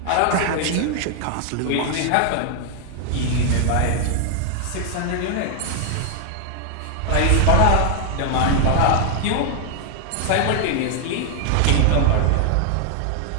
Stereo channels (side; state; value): both; different; correlation 0.00